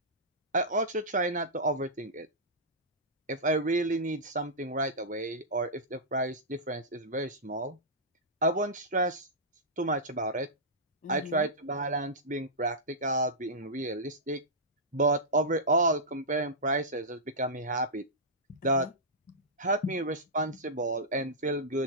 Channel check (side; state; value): both; normal; correlation -0.14